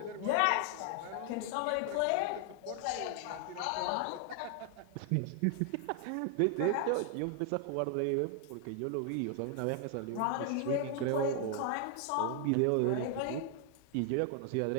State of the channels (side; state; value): both; different; correlation 0.00